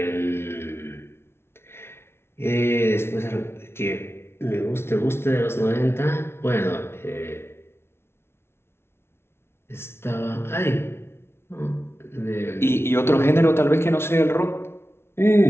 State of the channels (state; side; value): late; right; 0.12 ms